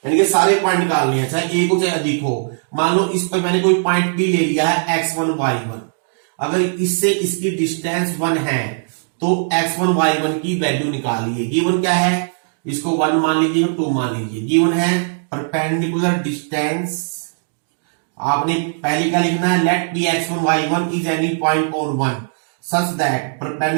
यानी कि सारे पॉइंट निकालने हैं, चाहे एक हो चाहे अधिक हो। मान लो इस पर मैंने कोई पॉइंट भी ले लिया है x1 y1, अगर इससे इसकी डिस्टेंस 1 है तो x1 y1 की वैल्यू निकालिए। गिवन क्या है, इसको 1 मान लीजिए, 2 मान लीजिए। गिवन है परपेंडिकुलर डिस्टेंस, आपने पहले क्या लिखना है, let P x1 y1 is any point on 1 such that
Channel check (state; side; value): silent; left; digital silence